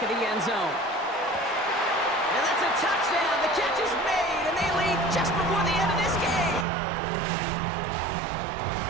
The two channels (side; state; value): left; drops out; at 6.7 s